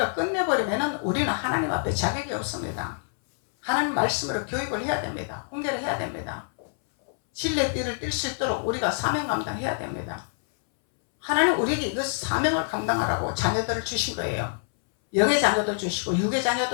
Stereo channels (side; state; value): right; silent; 61 dB below the other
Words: 끝내버리면은 우리는 하나님 앞에 자격이 없습니다. 하나님 말씀으로 교육을 해야 됩니다. 훈계를 해야 됩니다. 진리의 띠를 띨 수 있도록 우리가 사명 감당해야 됩니다. 하나님 우리에게 이것 사명을 감당하라고 자녀들을 주신 거예요. 영의 자녀도 주시고 육의